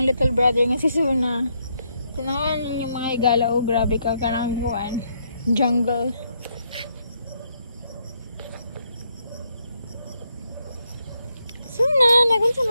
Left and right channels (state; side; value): inverted; both; correlation -0.76